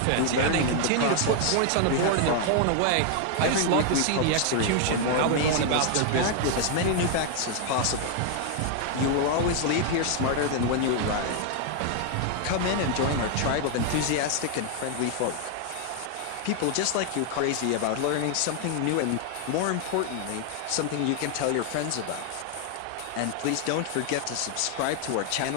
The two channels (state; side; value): different; both; correlation 0.00